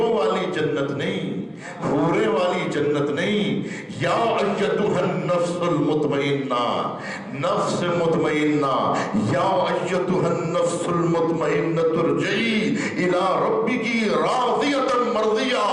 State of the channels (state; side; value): identical; both; correlation 1.00